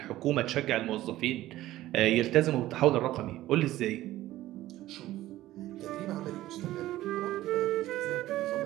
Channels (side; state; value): left; quieter; 15.4 dB